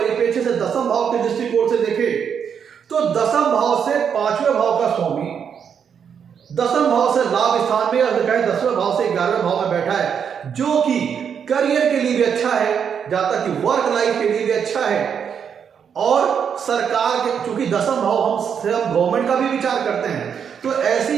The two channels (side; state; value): left; quieter; 7.4 dB